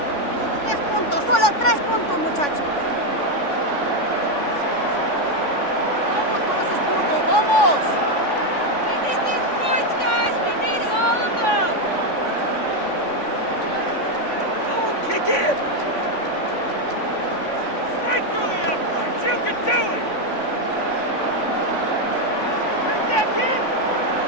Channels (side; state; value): right; late; 3.5 ms